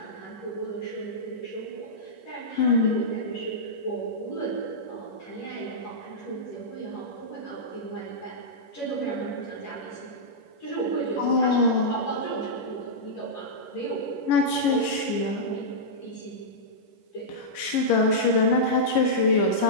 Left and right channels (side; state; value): right; late; 11 ms